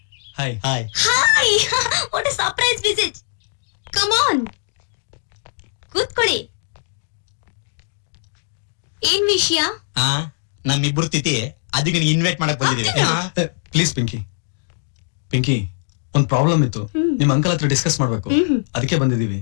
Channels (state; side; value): silent; right; digital silence